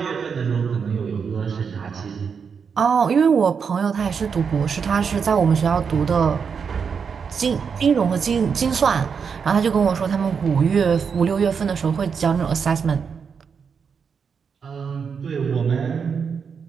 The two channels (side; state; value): left; quieter; 6.3 dB